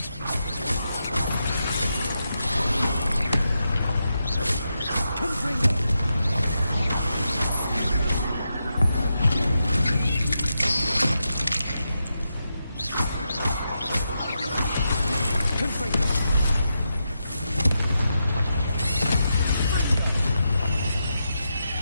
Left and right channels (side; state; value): both; inverted; correlation -0.86